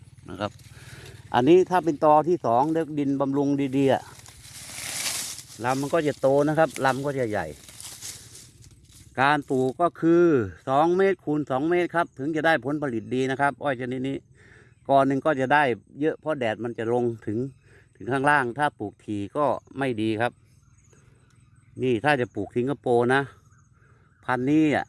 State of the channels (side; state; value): both; identical; correlation 1.00